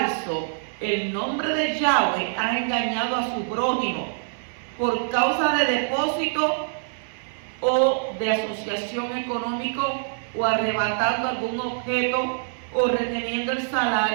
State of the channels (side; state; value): left; silent; 59 dB below the other